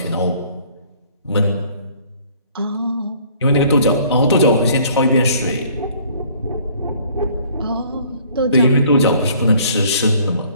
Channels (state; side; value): inverted; both; correlation -0.57